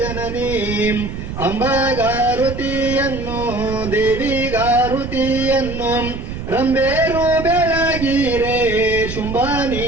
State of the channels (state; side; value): noise; right; rumble, 8 dB below the sound